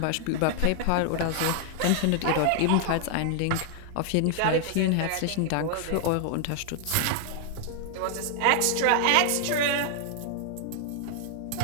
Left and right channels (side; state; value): both; different; correlation 0.00